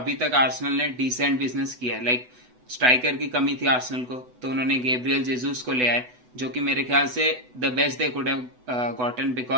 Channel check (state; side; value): late; left; 8.0 ms